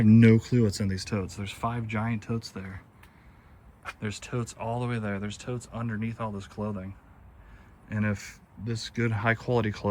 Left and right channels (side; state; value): both; identical; correlation 1.00